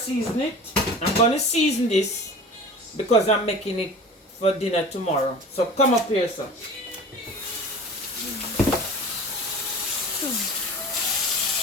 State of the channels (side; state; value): both; normal; correlation 0.38